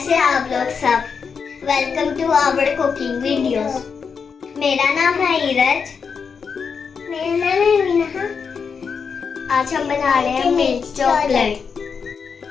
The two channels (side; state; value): right; quieter; 6.0 dB